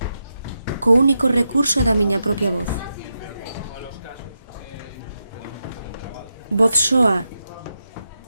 co único recurso da miña propia voz. Voz soa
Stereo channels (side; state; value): both; inverted; correlation -0.87